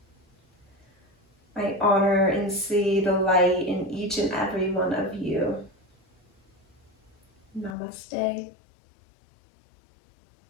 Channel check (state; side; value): drops out; right; at 7.8 s